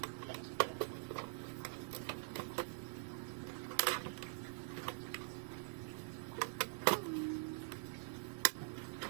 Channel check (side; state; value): left; silent; digital silence